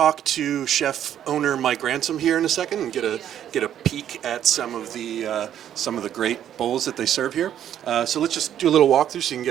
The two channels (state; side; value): quieter; left; 10.4 dB